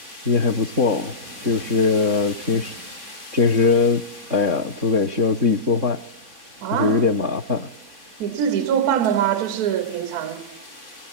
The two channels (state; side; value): late; left; 3.5 ms